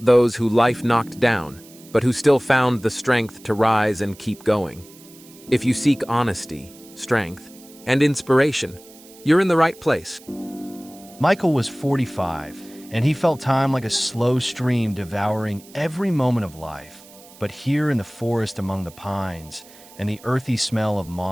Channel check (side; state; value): right; noise; hiss, 22 dB below the sound